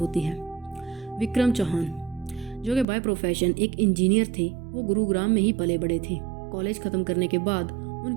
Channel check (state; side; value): drops out; left; at 2.9 s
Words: है। विक्रम चौहान, जो कि बाय प्रोफेशन एक इंजीनियर थे, वो गुरुग्राम में ही पले बड़े थे। कॉलेज ख़त्म करने के बाद